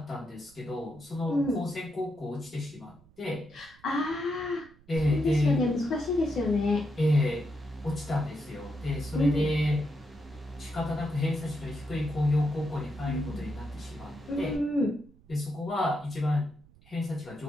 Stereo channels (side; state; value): right; noise; rumble, 27 dB below the sound